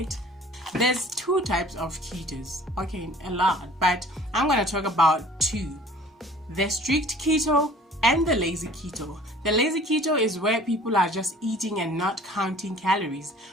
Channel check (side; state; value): both; normal; correlation 0.49